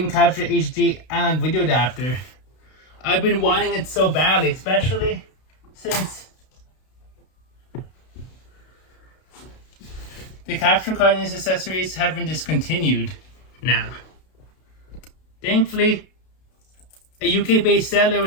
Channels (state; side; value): late; right; 32 ms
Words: Capture HD analog video adapter. I've been wanting it so badly, especially since the capture card and its accessories have been discontinued now. Thankfully, a UK-based seller